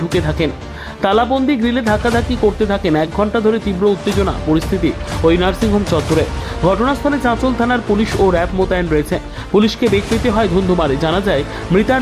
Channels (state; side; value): identical; both; correlation 1.00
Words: ঢুকে থাকেন। তালাবন্দি গ্রিলে ধাক্কাধাক্কি করতে থাকেন। 1 ঘন্টা ধরে তীব্র উত্তেজনা পরিস্থিতি ওই নার্সিংহোম চত্বরে। ঘটনাস্থলে চাঁচল থানার পুলিশ ও র্যাব মোতায়েন রয়েছে। পুলিশকে বেগ পেতে হয় ধুন্ধুমারে। জানা যায় মৃতার